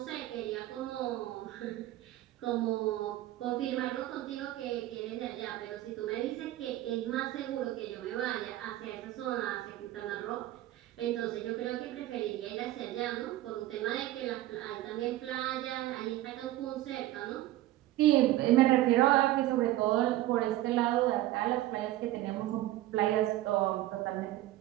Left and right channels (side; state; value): left; quieter; 15.3 dB